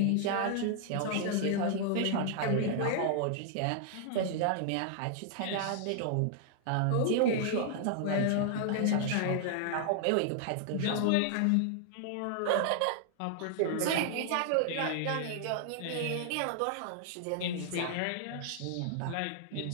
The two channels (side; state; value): both; different; correlation 0.00